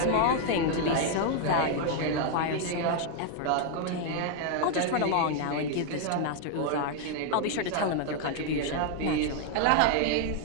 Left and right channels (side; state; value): both; different; correlation 0.00